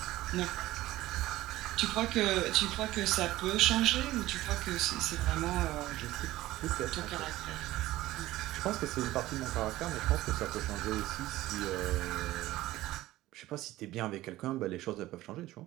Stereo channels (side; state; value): left; quieter; 16.5 dB